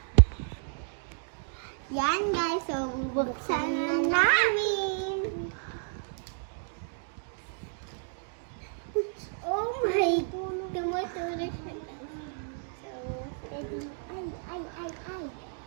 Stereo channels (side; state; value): left; silent; 57 dB below the other